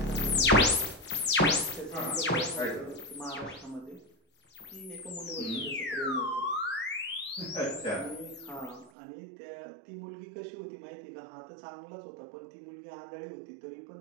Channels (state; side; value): drops out; left; at 8.9 s